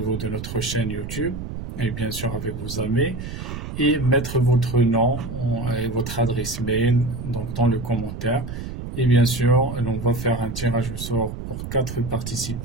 de notre chaîne YouTube et bien sûr avec vos amis et mettre votre nom et votre adresse mail donc dans le commentaire et bien sûr on va faire un tirage au sort pour 4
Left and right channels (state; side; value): noise; right; rumble, 8 dB below the sound